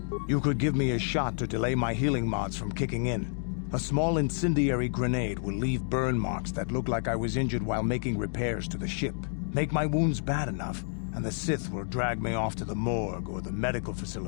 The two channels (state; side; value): silent; right; digital silence